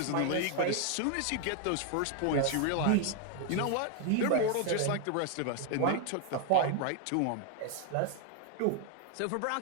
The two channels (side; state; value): both; different; correlation 0.01